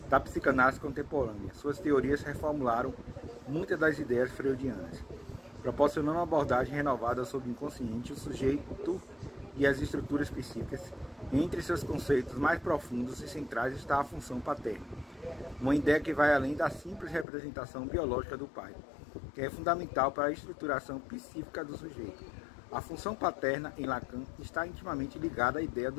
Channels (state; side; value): drops out; right; at 17.2 s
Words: da psicanálise contemporânea. Suas teorias reformularam muitas das ideias freudianas, proporcionando uma abordagem renovada sobre o inconsciente, o sujeito e as estruturas psíquicas. Entre seus conceitos mais profundos e centrais está a função paterna, uma ideia que vai além da simples representação biológica do pai, que é fundamental para a estruturação psíquica do sujeito. A função paterna, em Lacan, está intimamente ligada à ideia